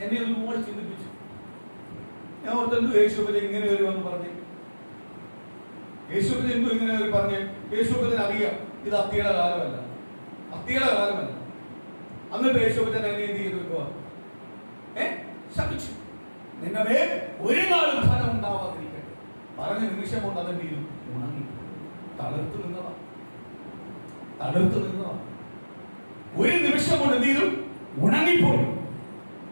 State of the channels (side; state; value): both; inverted; correlation -1.00